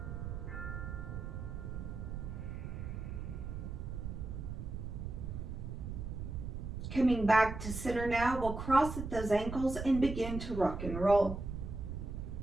Coming back to center now, we'll cross at those ankles and begin to rock and roll.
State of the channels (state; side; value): noise; right; rumble, 6 dB below the sound